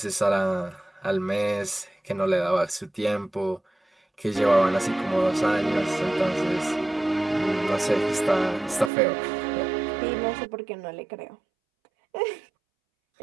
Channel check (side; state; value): left; drops out; at 8.9 s